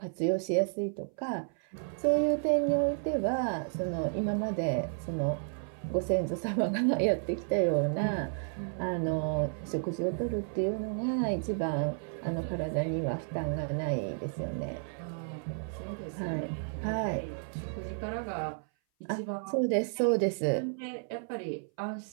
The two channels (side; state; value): left; silent; 56 dB below the other